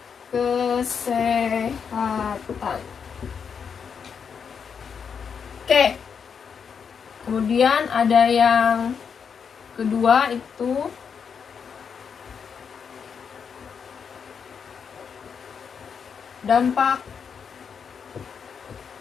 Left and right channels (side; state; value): right; quieter; 6.6 dB